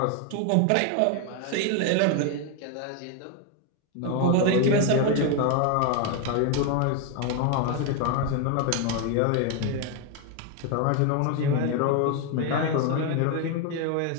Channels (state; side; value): different; both; correlation 0.01